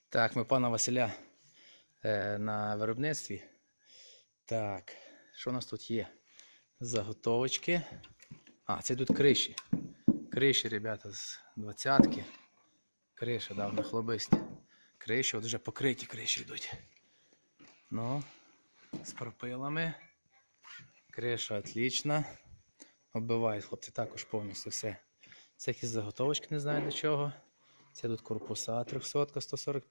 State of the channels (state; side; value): inverted; both; correlation -1.00